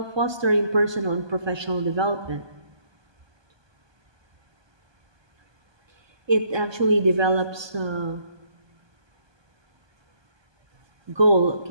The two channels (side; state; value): left; late; 1.2 ms